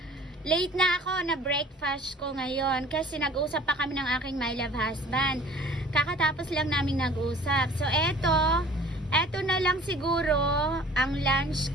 late na ako na breakfast ko ngayon kasi nag-usap pa kami ng aking my love husband. Kakatapos lang namin nag-usap. So eto na lang siguro ang lunch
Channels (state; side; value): normal; both; correlation 0.49